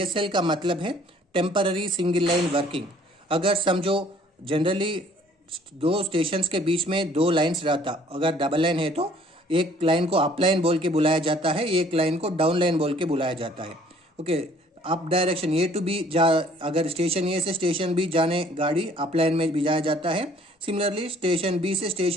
का मतलब है टेम्पररी सिंगल लाइन वर्किंग। अगर समझो जनरली दो स्टेशंस के बीच में दो लाइंस रहता, अगर डबल लाइन है तो एक लाइन को अप लाइन बोल के बुलाया जाता है, एक लाइन को डाउन लाइन बोल के बुलाया जाता है। Okay, up direction A to B अगर स्टेशन A से स्टेशन B जाने गाड़ी अप लाइन में भिजाया जाता है। सिमिलरली स्टेशन B से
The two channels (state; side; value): normal; both; correlation 0.57